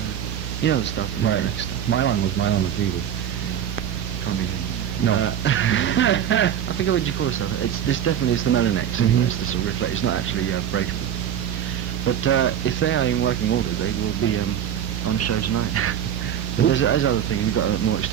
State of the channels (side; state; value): left; quieter; 9.5 dB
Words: You know the stuff. Right. Mylon was Mylon the Fever. Can't be him. No. I think what you call it stuff. This definitely is the Melanex. It's the sort of reflect. It's not actually breakable. But if they are in working order, they will be on show tonight. But there's other thing. We've got a more